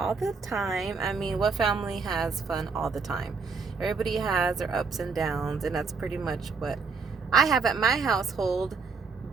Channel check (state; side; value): quieter; left; 4.9 dB